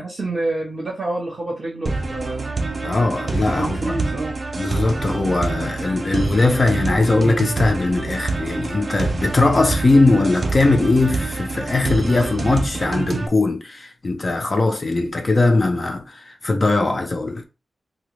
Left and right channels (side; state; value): both; normal; correlation 0.93